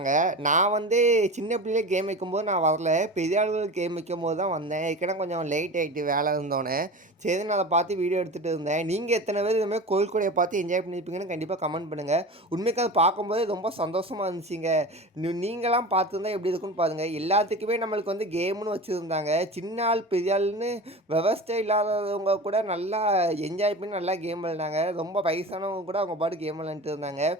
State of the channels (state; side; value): normal; both; correlation 0.31